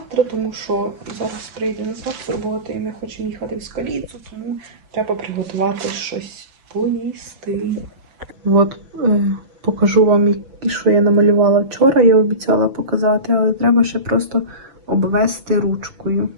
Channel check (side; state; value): left; late; 6.1 ms